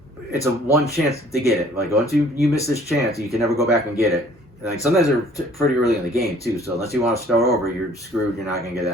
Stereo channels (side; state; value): both; normal; correlation 0.56